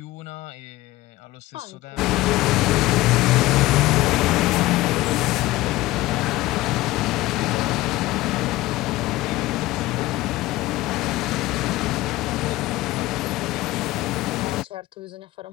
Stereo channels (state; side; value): quieter; right; 18.1 dB